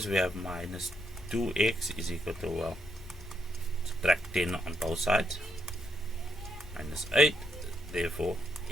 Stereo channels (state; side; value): normal; both; correlation 0.77